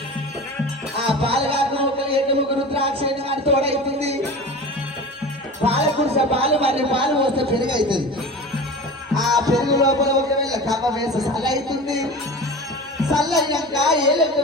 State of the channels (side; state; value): both; normal; correlation 0.33